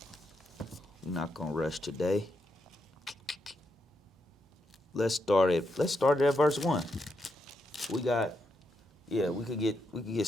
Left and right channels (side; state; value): both; normal; correlation 0.82